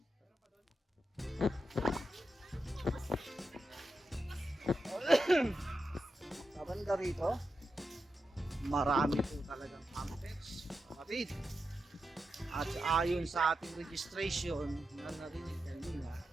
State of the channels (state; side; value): normal; both; correlation 0.88